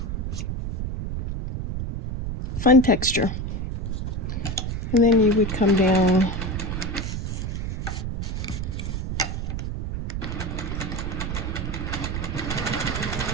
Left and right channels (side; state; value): right; noise; rumble, 3 dB below the sound